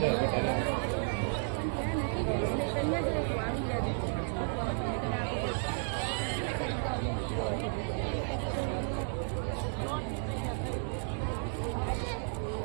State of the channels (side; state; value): left; silent; 56 dB below the other